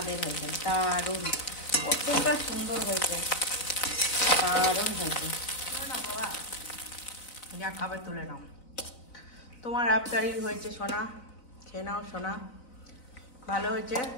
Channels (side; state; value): right; late; 4.0 ms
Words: হয়েছে, দারুণ, কতটা সুন্দর হয়েছে, দারুণ হয়েছে। নাও বাবা, যা খাবে তুলে নাও। তোমার আবদারি হয়েছে সোনা, খেয়ে নাও সোনা। ভালো হয়েছে?